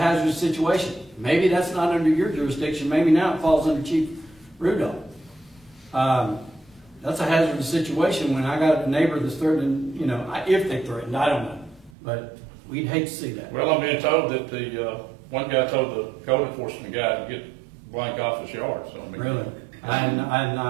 situation. Maybe that's not under your jurisdiction. Maybe now it falls under Chief Rudolph. That's a hazardous situation when I got a neighbor that's threatening, you know, if they threatened, I don't know. But we'd hate to see that. Well, I'm being told that the one guy told the code enforcement guy to get blank off his yard. So I mean, Really? I had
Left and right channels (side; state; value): left; drops out; at 11.9 s